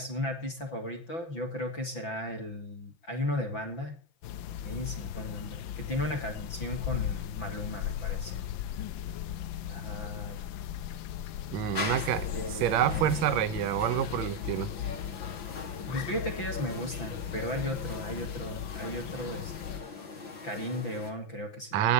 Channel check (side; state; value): right; late; 5.9 ms